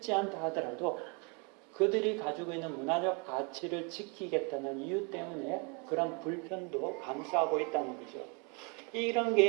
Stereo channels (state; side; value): quieter; left; 33.7 dB